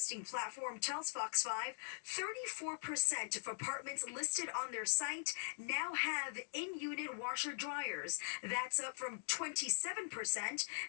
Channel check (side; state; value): right; silent; digital silence